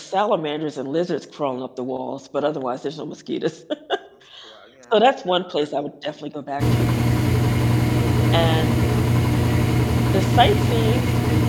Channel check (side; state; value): both; identical; correlation 1.00